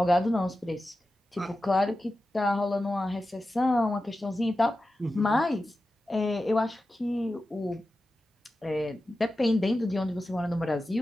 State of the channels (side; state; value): both; normal; correlation 0.93